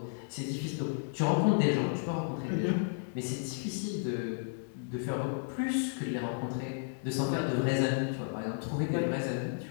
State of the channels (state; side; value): silent; right; digital silence